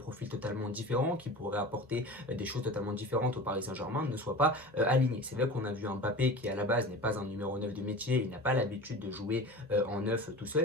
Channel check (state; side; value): normal; both; correlation 0.35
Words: totalement différents, qui pourraient apporter des choses totalement différentes au Paris Saint-Germain ne soient pas alignés. C'est vrai qu'on a vu un Mbappé qui à la base n'est pas un numéro 9 de métier, il n'a pas l'habitude de jouer en 9 tout